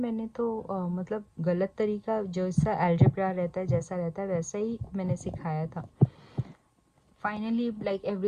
तो मतलब गलत तरीका, जैसा अलजेब्रा रहता है जैसा रहता है वैसा ही मैंने सिखाया था. फाइनली लाइक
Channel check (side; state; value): both; identical; correlation 1.00